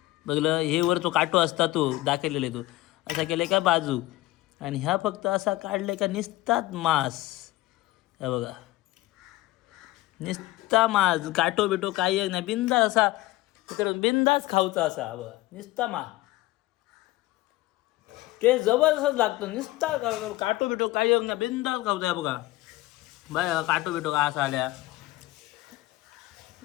बघलं हे वर तो काटो असता तो दाखवलेला तो असा केलाय का बाजू आणि ह्या फक्त असा काढलाय का निसतात मांस हे बघा निस्ता मांस काटो बिटो काही एक नाही बिंदास असा बिंदास खाऊचा असा बघा निस्ता मा ते जबरदस्त लागतो निस्ता काटो बिटो काही एक नाही बिंदास खाऊचा बघा बाय काटो बिटो का असा आल्या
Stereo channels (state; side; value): quieter; right; 18.2 dB